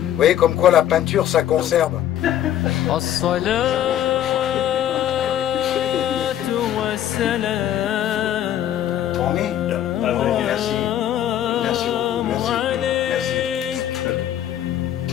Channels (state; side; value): quieter; right; 11.3 dB